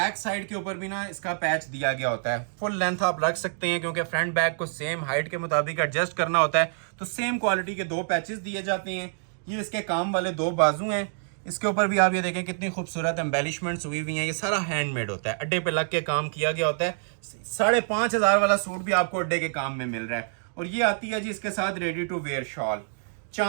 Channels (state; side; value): silent; left; digital silence